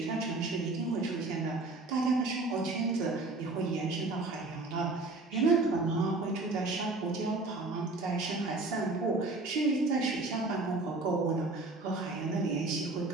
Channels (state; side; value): quieter; left; 3.2 dB